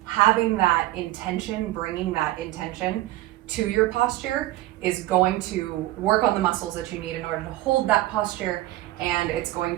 having that intention, bringing that intention to your posture is going to work on the muscles that you need in order to hold that posture, and it's going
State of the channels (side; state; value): left; quieter; 16.4 dB